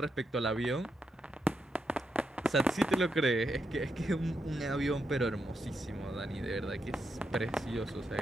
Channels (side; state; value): both; normal; correlation 0.83